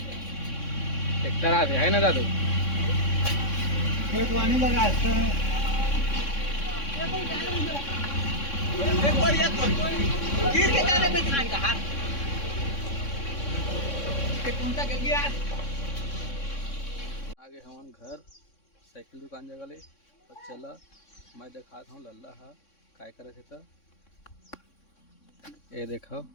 ट्रैक्टर आते है ना दादू खेत वानी लगा है। एक बार ये तो गिर के जाने में खान का हाथ के कुंता के गया। आगे हमारे घर साइकिल दुकान जगह ले और चला मैं दिखाता हूँ लल्ला हा काय करे थे। तो ये देखो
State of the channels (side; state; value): right; late; 3.6 ms